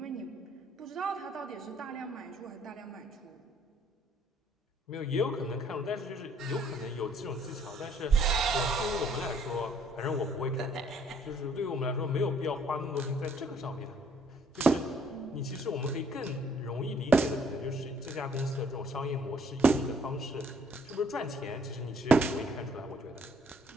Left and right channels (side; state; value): both; normal; correlation 0.64